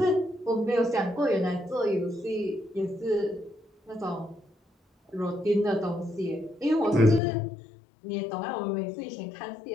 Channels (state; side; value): drops out; right; at 7.2 s